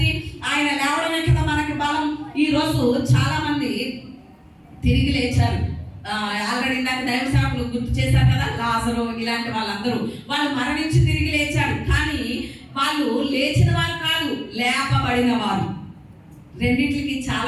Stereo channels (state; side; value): identical; both; correlation 1.00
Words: ఆయన లేవడమే కదా మనకి బలం. ఈ రోజు చాలా మంది తిరిగి లేచారు. ఆల్రెడీ ఇందాక దైవ సేవకులు గుర్తు చేశారు కదా, లాజరు ఇలాంటి వాళ్ళందరూ వాళ్ళు మరణించి తిరిగి లేచారు. కానీ వాళ్ళు లేచిన వారు కాదు, లేపబడిన వారు. రెండింటికి